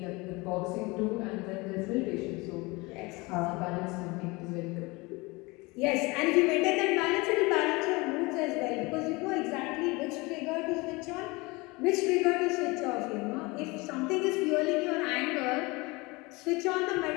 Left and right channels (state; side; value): quieter; right; 24.6 dB